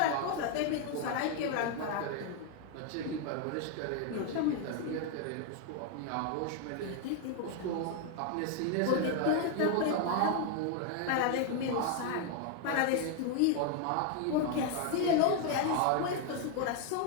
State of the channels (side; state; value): both; different; correlation 0.01